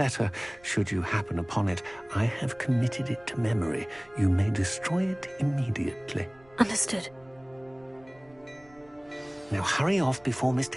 should you happen upon it, I have committed it to memory. You may destroy it immediately. Understood. Now hurry off before Mr.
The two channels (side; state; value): right; noise; rumble, 28 dB below the sound